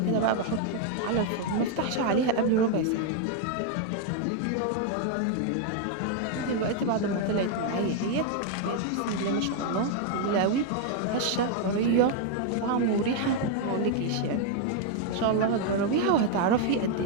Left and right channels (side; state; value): both; different; correlation 0.01